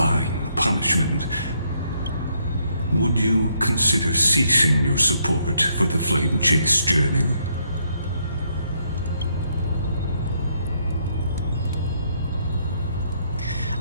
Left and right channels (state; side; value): inverted; both; correlation -0.73